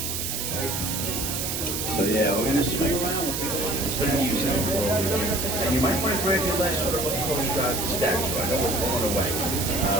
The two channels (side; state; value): right; noise; hiss, 2 dB below the sound